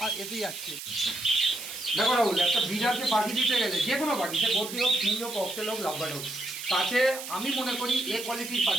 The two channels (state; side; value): noise; right; hiss, 9 dB below the sound